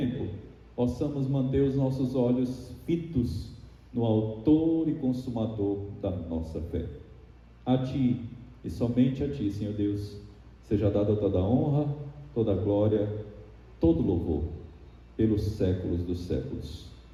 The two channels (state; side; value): identical; both; correlation 1.00